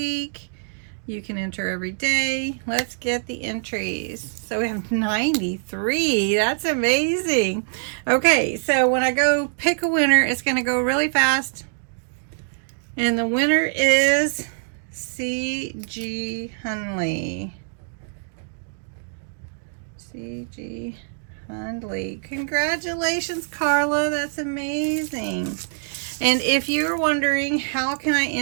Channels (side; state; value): left; silent; digital silence